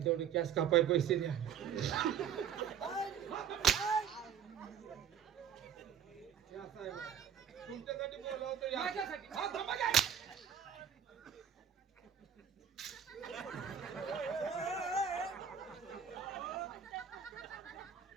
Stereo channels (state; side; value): quieter; left; 7.9 dB